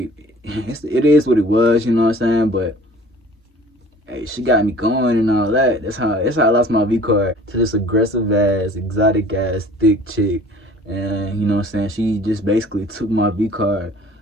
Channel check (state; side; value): normal; both; correlation 0.48